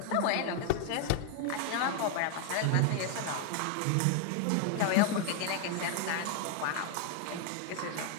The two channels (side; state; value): both; different; correlation 0.00